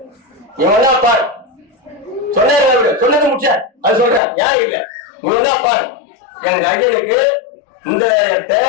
இவன் தான் பாரு சொன்ன சொன்னது முடிச்ச அது சொல்றேன். யார் இல்லை இவன் தான் பாரு. எங்க ஐயனுக்கு இந்த இடத்தை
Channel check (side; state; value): right; drops out; at 4.2 s